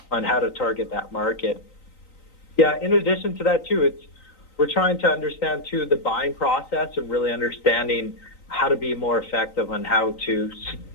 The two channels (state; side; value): late; right; 3.9 ms